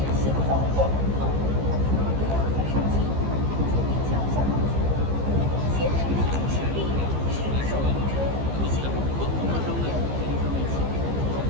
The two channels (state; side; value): late; left; 15 ms